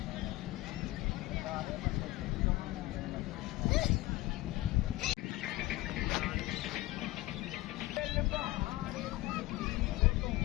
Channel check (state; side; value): quieter; right; 18.4 dB